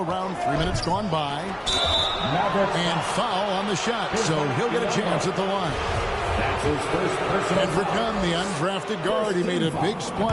3 minutes gone by. And foul on the shot, so he'll get a chance at the line. Edric Nunn, the undrafted guard, he made a big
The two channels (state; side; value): identical; both; correlation 1.00